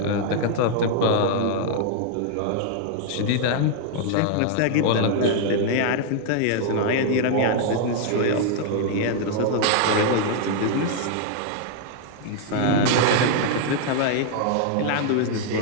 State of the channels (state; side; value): different; both; correlation 0.00